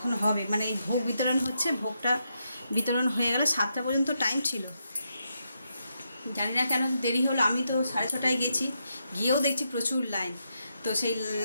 হবে। মানে এই ভোগ বিতরণ হচ্ছে, ভোগটা বিতরণ হয়ে গেলে 7টা পর্যন্ত টাইম ছিল। জানি না কেন দেরি হলো। আমি তো 6:30টায় গেছি, গিয়েও দেখছি প্রচুর লাইন। তো সেই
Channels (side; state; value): both; inverted; correlation -0.82